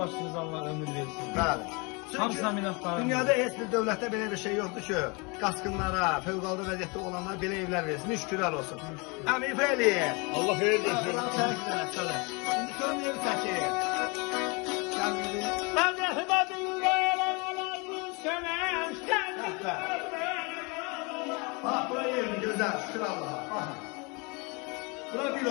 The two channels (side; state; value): right; quieter; 29.7 dB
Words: Allah ömür versin. Bəli. Hamısına minnətdarım. Dünyada heç bir dövlətdə belə bir şey yoxdur ki, qaçqınlara, fövqəladə vəziyyətdə olanlara belə evlər versin. Şükürlər olsun. Əmin Fəliyev. Allah xeyir versin. İndi görməyib çəkir. Mən rəhmətin qayalalarını sənə Bax, bura yerin gözəl, şükür Allaha. Baxın. Bura bir